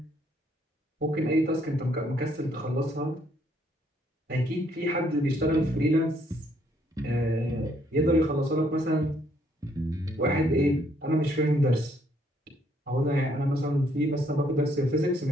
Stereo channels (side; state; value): both; normal; correlation 0.68